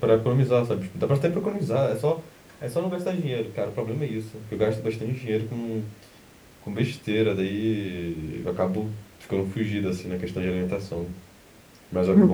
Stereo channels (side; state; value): both; identical; correlation 1.00